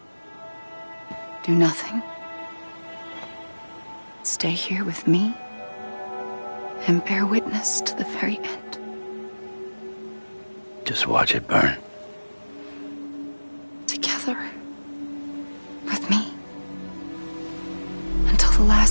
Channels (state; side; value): inverted; both; correlation -1.00